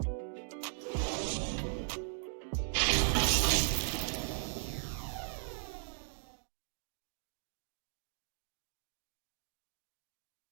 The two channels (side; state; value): left; silent; digital silence